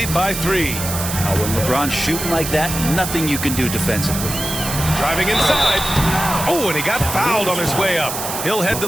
by 3. Now, when LeBron's shooting like that, nothing you can do defensively. Driving inside. Oh, and he got fouled on his way up. He'll head to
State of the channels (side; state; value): right; noise; hiss, 5 dB below the sound